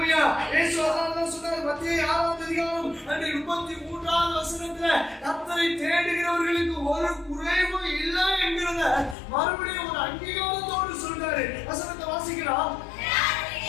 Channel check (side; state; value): right; drops out; at 9.2 s